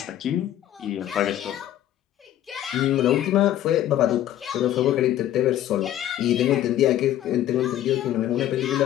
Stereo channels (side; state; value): right; quieter; 12.2 dB